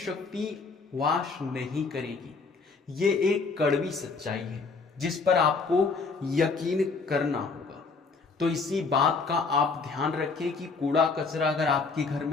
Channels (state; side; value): quieter; right; 4.4 dB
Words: वास नहीं करेगी। ये एक कड़वी सच्चाई है जिस पर आपको यकीन करना होगा। तो इसी बात का आप ध्यान रखें कि कूड़ा कचरा अगर आपके घर